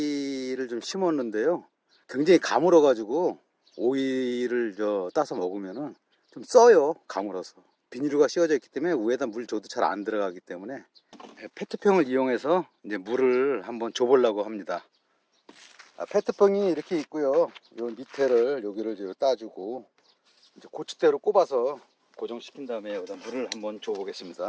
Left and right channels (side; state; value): both; identical; correlation 1.00